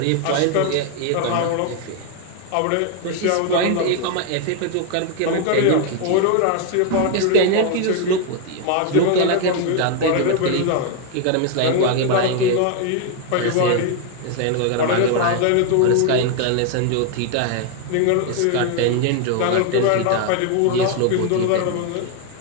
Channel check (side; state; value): both; different; correlation 0.01